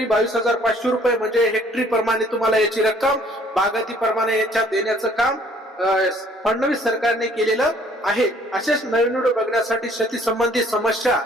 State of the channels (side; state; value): both; normal; correlation 0.59